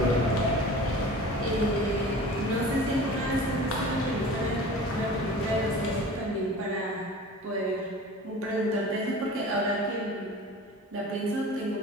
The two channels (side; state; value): both; normal; correlation 0.39